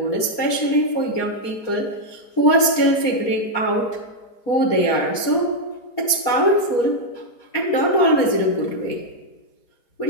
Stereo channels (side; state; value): right; late; 4.2 ms